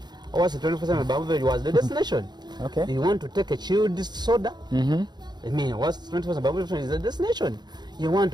was 24/7 beverage was the destination. Okay. You want to take a chilled soda? I mean, what's 24/7 beverage is the destination. You want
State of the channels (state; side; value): late; left; 0.21 ms